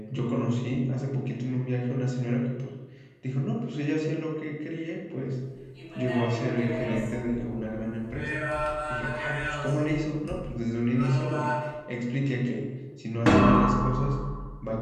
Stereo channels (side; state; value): both; identical; correlation 1.00